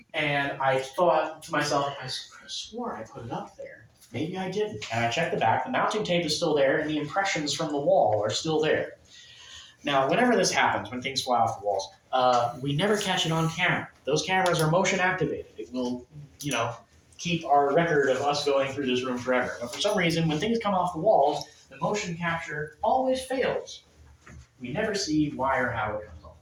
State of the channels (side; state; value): both; identical; correlation 1.00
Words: And I thought to myself, I swore I put it up there. Maybe I didn't. And I checked the back. The mounting tape is still there, and the impressions from the wall are still there. Now, whenever this happens, when things fly off the walls, we never catch it on camera. Those cameras are motion activated. It will, keep our record of us going through this room forever. But for some reason, when things come off the walls, the motion capture always fails. We never see why or how it comes off